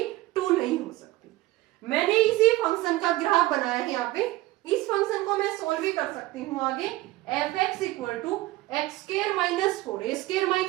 2 नहीं हो सकती। मैंने इसी फंक्शन का ग्राफ बनाया है यहाँ पे। इस फंक्शन को मैं सोल्व भी कर सकती हूँ आगे। f(x = x² - 4, a²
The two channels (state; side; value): quieter; left; 18.1 dB